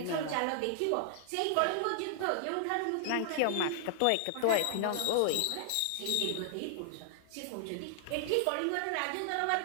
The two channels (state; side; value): different; both; correlation -0.01